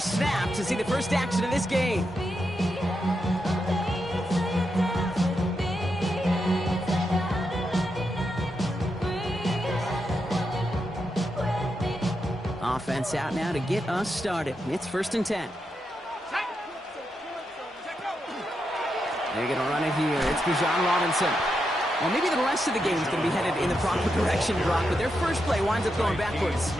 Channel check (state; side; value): normal; both; correlation 0.85